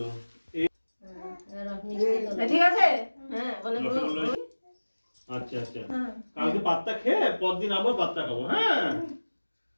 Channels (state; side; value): inverted; both; correlation -1.00